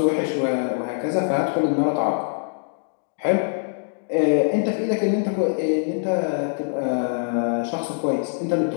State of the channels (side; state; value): right; silent; digital silence